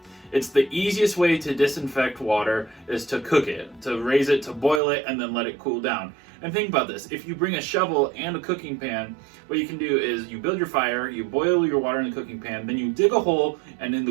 It's the easiest way to disinfect water is to cook it, to raise it, to boil it, and then let it cool down. And think about this, if you bring a shovel and a cooking pan, what you can do is you build your fire, you boil your water in the cooking pan, then you dig a hole, and in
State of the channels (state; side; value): drops out; left; at 4.8 s